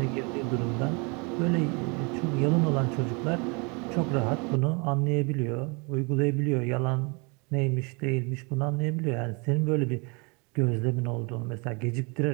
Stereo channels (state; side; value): quieter; left; 31.3 dB